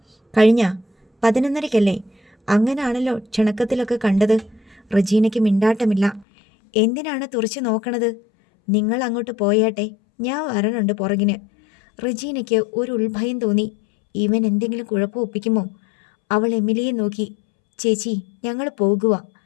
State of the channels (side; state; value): right; drops out; at 6.2 s